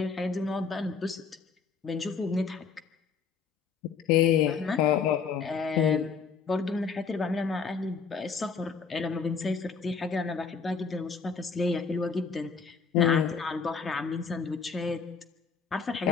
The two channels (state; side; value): quieter; right; 5.7 dB